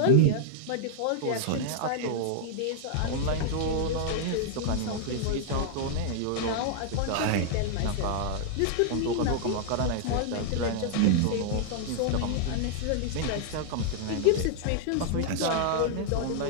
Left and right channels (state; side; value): different; both; correlation -0.01